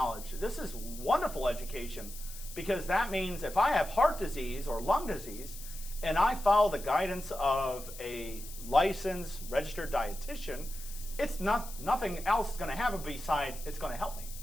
This is wonderful education because that means if I have heart disease or lung disease and I follow the guidance of a licensed registered dietitian, it's nothing else is going to happen besides it's going to help me.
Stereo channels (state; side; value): noise; left; hiss, 13 dB below the sound